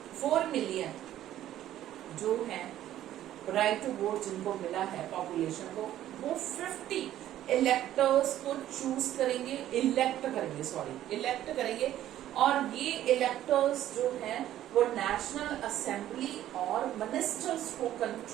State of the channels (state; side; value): quieter; left; 12.6 dB